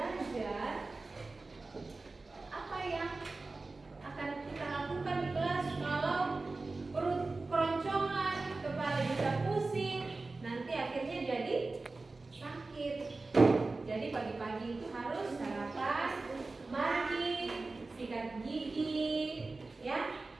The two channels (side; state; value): left; quieter; 3.5 dB